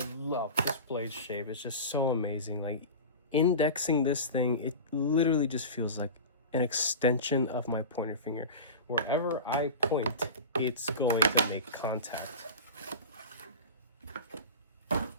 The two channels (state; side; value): inverted; both; correlation -0.30